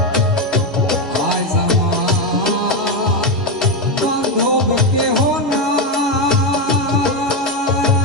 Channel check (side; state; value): both; normal; correlation 0.09